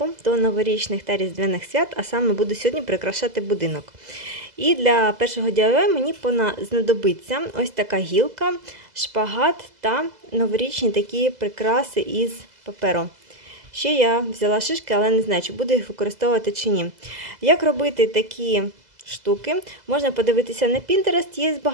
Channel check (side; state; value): left; late; 2.0 ms